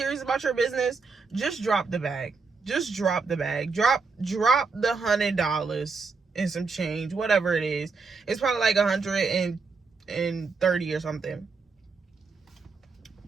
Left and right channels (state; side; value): quieter; left; 4.5 dB